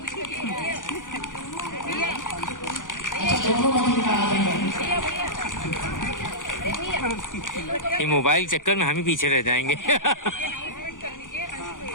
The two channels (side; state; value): right; late; 0.88 ms